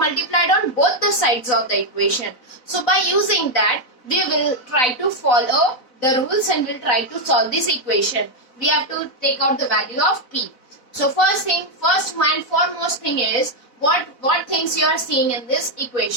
on both the sides of the equation. So by using that, we will try to follow the rules and will try to solve this equation. We have to take out the value of p. So first and foremost thing is what things you are seeing in this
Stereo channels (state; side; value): late; right; 4.0 ms